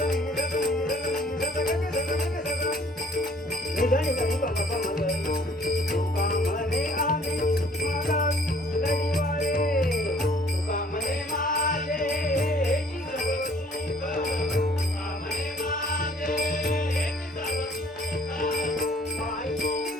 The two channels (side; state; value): both; normal; correlation 0.57